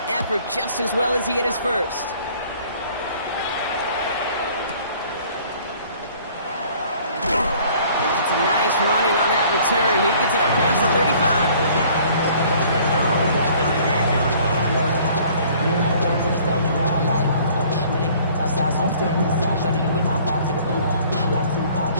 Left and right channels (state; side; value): inverted; both; correlation -0.55